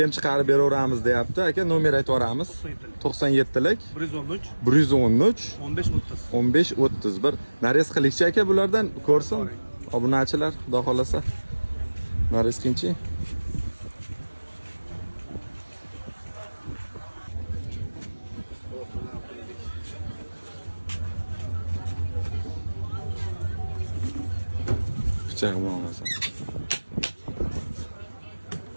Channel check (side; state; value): both; inverted; correlation -1.00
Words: ham chiqarib beraveramiz deyapti. Aka, nomer aytib yuboramiz. 97lik 113 113 15 30. 15-31. Narez qilikchi aka bulardan ko'rsin. Obunachilar, xudo xolasa. Narez qilingchi. Pichoq bilan olasan.